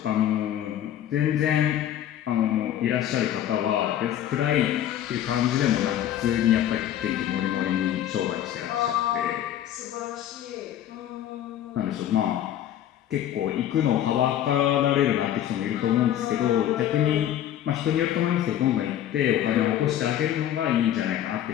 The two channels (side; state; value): right; quieter; 11.3 dB